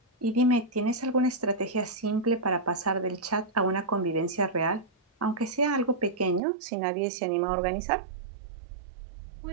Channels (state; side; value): drops out; left; at 6.4 s